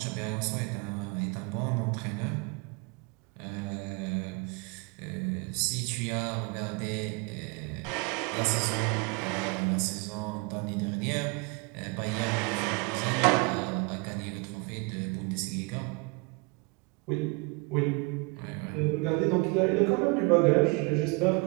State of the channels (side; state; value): left; quieter; 29.6 dB